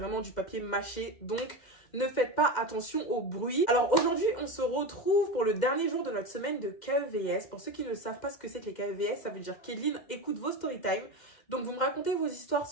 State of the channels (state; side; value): late; right; 2.1 ms